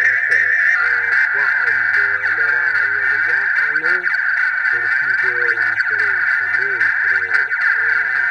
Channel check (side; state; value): both; identical; correlation 1.00